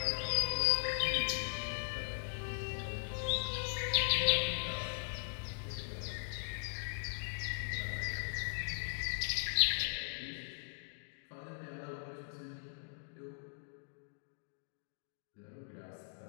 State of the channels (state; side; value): silent; right; digital silence